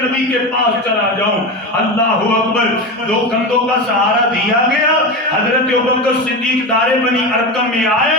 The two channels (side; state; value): both; normal; correlation 0.21